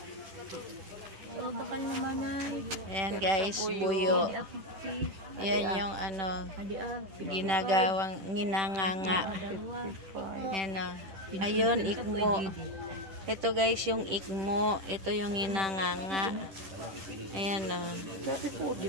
Bakal naman ay. Ayan guys, buyo. Yan yung ano, ginagawang ginanganga. Ayan o. Ayun, ikmo. Ito guys, yung ikmo. Ito yung ginanganga. Ayan o.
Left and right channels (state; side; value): late; left; 10 ms